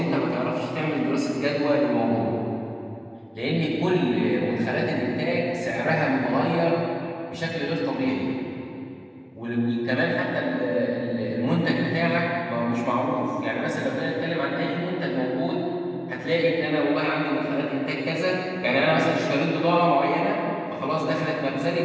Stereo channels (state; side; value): identical; both; correlation 1.00